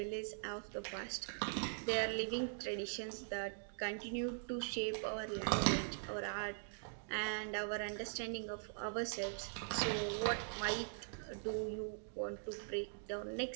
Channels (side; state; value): left; silent; digital silence